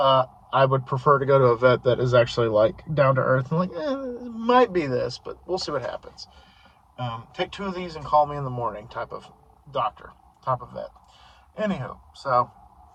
I would prefer to go to a vet that is actually like down to earth and like, it might be this, but we'll see what happens. Take 2 of these and call me in the morning type of doctor, type of vet. Anywho, so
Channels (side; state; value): both; identical; correlation 1.00